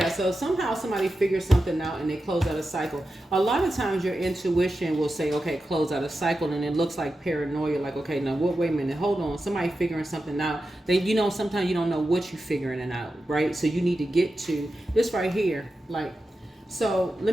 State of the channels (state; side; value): normal; both; correlation 0.91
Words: so somehow somebody figures something out and they close out a cycle. A lot of times your intuition will say, okay, close out a cycle, and it looks like paranoia, like, okay, now wait a minute, hold on, somebody figuring something out. Then, you know, sometimes you don't know what you're figuring it out, right? So you need to get to this right here, like, So